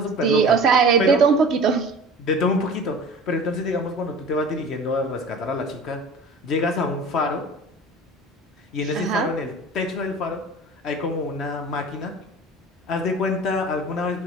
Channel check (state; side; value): normal; both; correlation 0.40